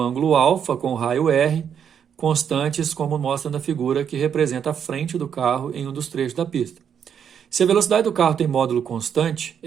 alfa com raio R, constantes como mostra na figura que representa a frente do carro em um dos trechos da pista. Se a velocidade do carro tem módulo constante,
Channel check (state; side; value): quieter; left; 8.0 dB